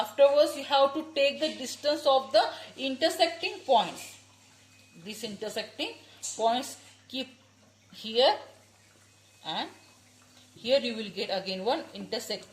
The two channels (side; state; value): both; identical; correlation 1.00